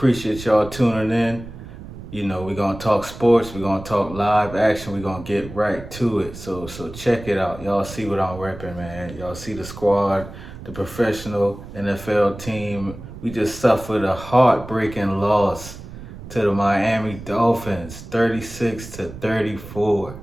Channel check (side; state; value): right; noise; rumble, 14 dB below the sound